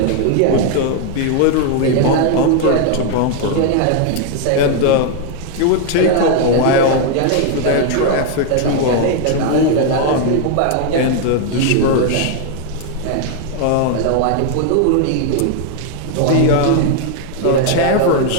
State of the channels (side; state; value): both; different; correlation 0.00